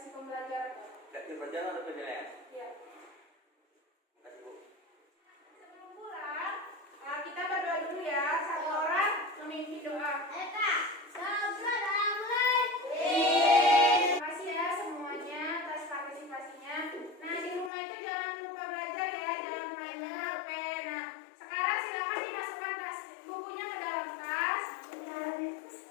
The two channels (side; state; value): right; drops out; at 17.7 s